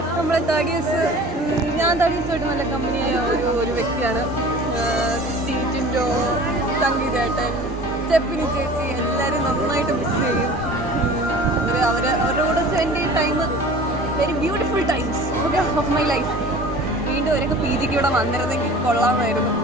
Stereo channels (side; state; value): both; normal; correlation 0.43